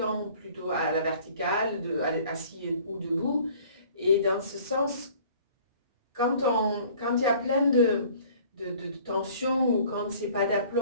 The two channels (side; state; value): both; inverted; correlation -0.52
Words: plutôt à la verticale, assis ou debout. Et dans ce sens, quand il y a plein de tensions ou quand c'est pas